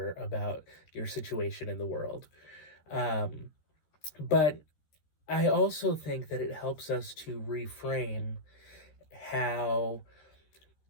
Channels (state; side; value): late; right; 13 ms